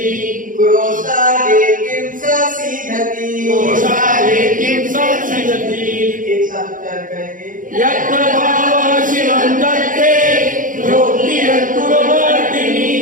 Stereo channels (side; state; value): left; late; 0.39 ms